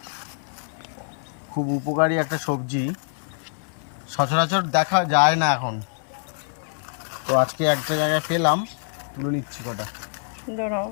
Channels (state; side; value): silent; right; digital silence